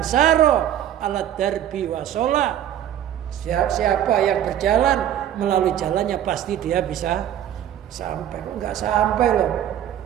ala darbi wasola, siapa yang berjalan melalui jalannya pasti dia bisa sampai. Kok nggak sampai loh?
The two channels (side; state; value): left; quieter; 10.9 dB